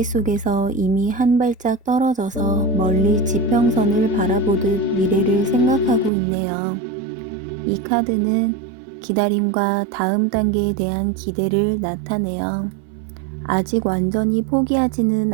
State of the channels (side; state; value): left; drops out; at 6.1 s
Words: 속에서 이미 한 발짝 떨어져서 멀리 지평선을 바라보듯 미래를 생각하고 있네요. 이 카드는 기다림과 다음 단계에 대한 기대를 나타내요. 아직 완전히 포기하지는